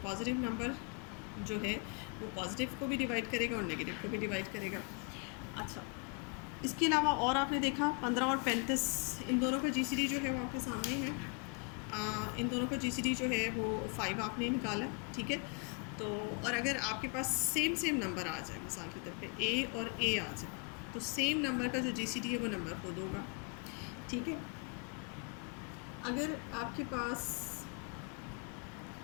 नंबर जो है वो पॉजिटिव को भी डिवाइड करेगा और नेगेटिव को भी डिवाइड करेगा। अच्छा, इसके अलावा और आपने देखा 15 और 35, इन दोनों का जीसीडी जो है वो आपके सामने है। इन दोनों का जीसीडी जो है वो 5 आपने निकाला, ठीक है। तो और अगर आपके पास सेम नंबर आ जाए, मिसाल के तौर पे ए और ए आ जाए, तो सेम नंबर का जो जीसीडी है वो नंबर खुद होगा, ठीक है। अगर आपके पास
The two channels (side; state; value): right; quieter; 33.8 dB